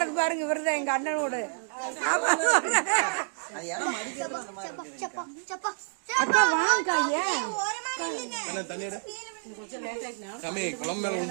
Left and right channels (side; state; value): left; silent; digital silence